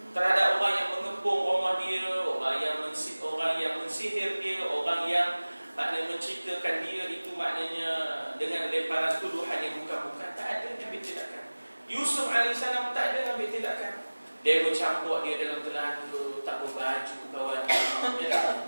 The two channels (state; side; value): inverted; both; correlation -1.00